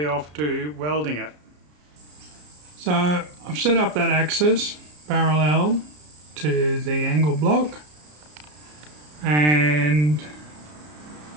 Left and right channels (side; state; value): left; late; 33 ms